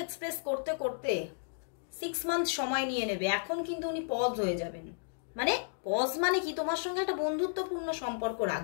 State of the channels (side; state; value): right; silent; digital silence